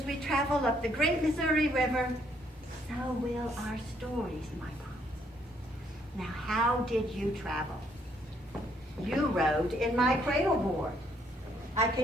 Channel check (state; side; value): normal; both; correlation 0.69